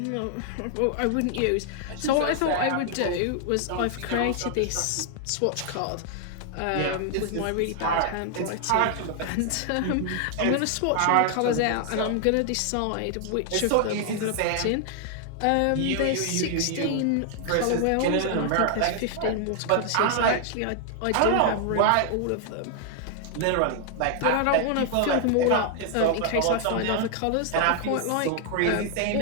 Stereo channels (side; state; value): both; different; correlation 0.00